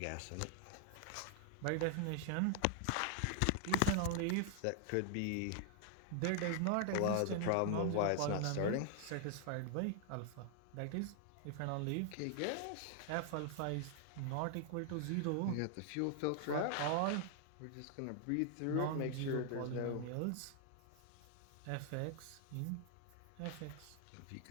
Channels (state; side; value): different; both; correlation 0.00